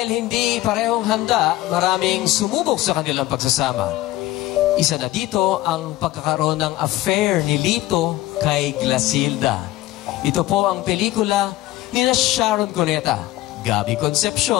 hindi parehong handa, maraming sumubok sa kanilang pagsasama. Isa na dito ang pagkakaroon ng affair ni Lito kay Glasilda. Ito po ang pelikula ni Sharon Cuneta, Gabby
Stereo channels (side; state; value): right; quieter; 16.5 dB